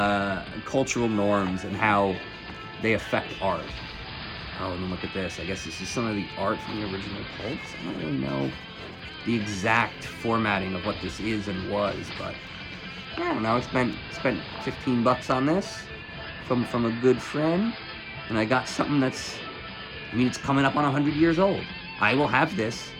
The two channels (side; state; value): both; identical; correlation 1.00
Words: cultural norms and how they affect art. Oh, and then look at this. I guess this is some of the art from the original pulps. I don't really know the exact formatting of what this is and was, but I don't know. I spent $15 on this from a good friend, and I got something that's, it's coming up on 100 years old. I will have this